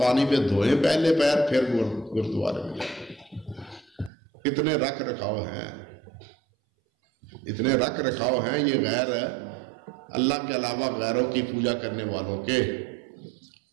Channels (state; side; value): drops out; left; at 4.1 s